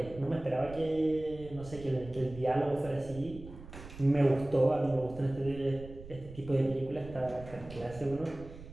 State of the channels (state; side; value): noise; right; rumble, 15 dB below the sound